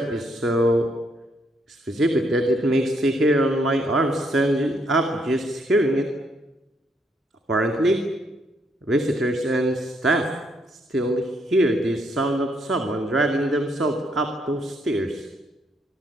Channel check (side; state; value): both; normal; correlation 0.73